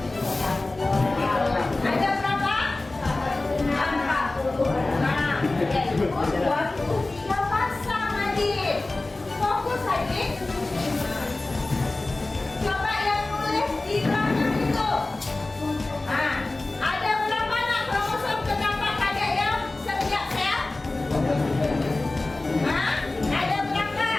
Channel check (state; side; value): quieter; right; 3.0 dB